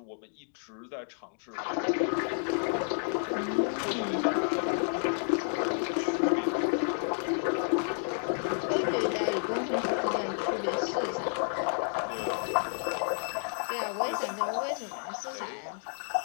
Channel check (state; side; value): silent; right; 57 dB below the other